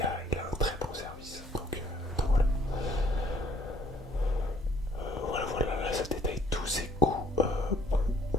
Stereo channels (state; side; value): normal; both; correlation 0.61